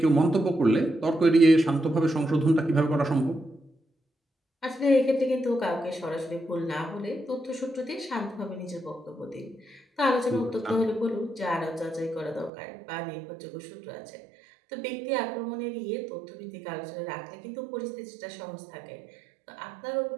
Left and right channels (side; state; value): left; drops out; at 12.5 s